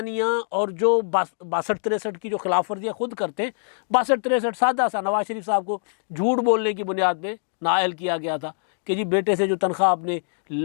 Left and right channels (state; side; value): silent; right; digital silence